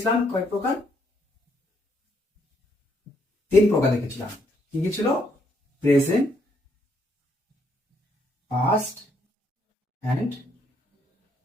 কয়েক প্রকার? 3 প্রকার দেখেছিলাম। কি কি ছিল? Present, past and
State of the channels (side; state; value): both; normal; correlation 0.72